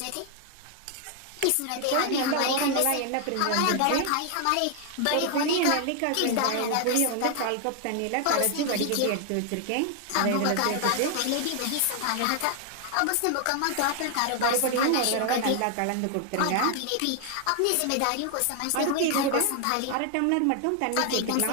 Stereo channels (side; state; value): both; different; correlation 0.00